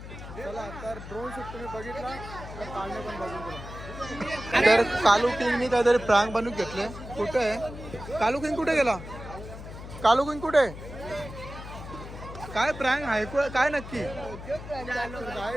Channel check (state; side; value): noise; left; hum, 12 dB below the sound